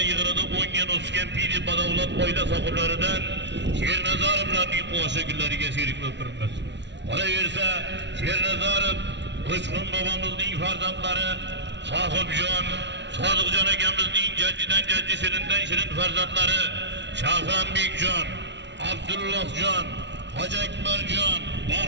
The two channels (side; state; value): left; late; 0.51 ms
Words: yig'inida 10 ga o'sgan piri badavlat oila sohiblaridan Shernazarovlarning qo'shiq kunlariga sherik bo'lib turibmiz. Qolaversa, Shernazarov Uchqun bobomizning farzandlari Sohibjon, Sodiqjon akamizning jaddidan jaddi shirindan shirin farzandlari Shahronbekjon, Abdullohjon, Hoji Akbarjon,